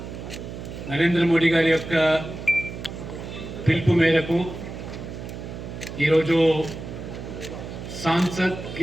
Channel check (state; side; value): noise; right; hum, 9 dB below the sound